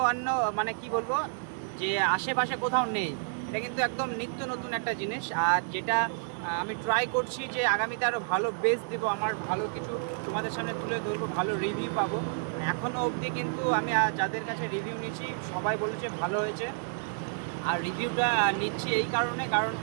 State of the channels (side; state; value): left; silent; digital silence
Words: অন্য মানে কি বলবো যে আশেপাশে কোথাও নেই। এটা কিন্তু একদম নিত্য নতুন একটা জিনিস, আর যেটা আমি ট্রাই করছি যে আগামীতে আরও ভালো বেস দেবো, আমার ভালো কিছু তোমাদের সামনে তুলে ধরবো, ভালো রিভিউ পাবো। এখনও অবধি কিন্তু আমি যাদের কাছে রিভিউ নিয়েছি সবাই বলেছে ভালো হয়েছে। আর রিভিউটা নিচ্ছি এই কারণে, কারণ